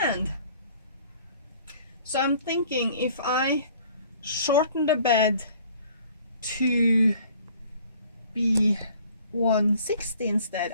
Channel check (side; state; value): both; inverted; correlation -0.54